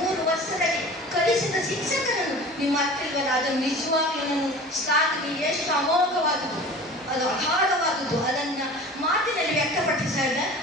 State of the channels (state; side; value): normal; both; correlation 0.40